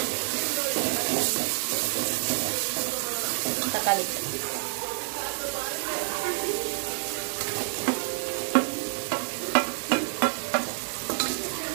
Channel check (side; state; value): left; silent; 59 dB below the other